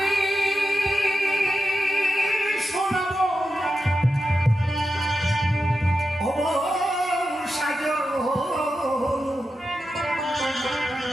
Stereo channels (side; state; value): both; normal; correlation 0.89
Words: শোনাবো ও সাজো